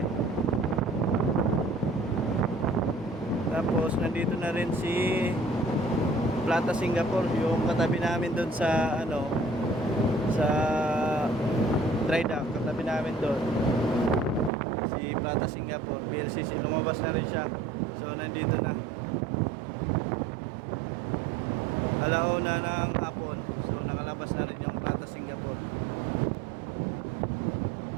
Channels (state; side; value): drops out; left; at 14.5 s